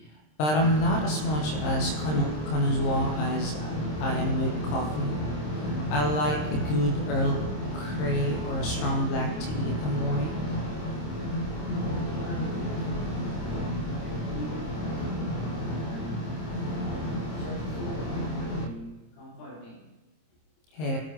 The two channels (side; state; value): right; late; 26 ms